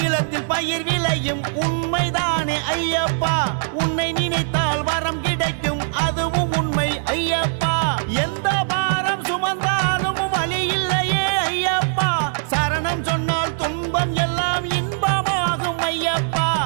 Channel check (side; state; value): left; silent; 65 dB below the other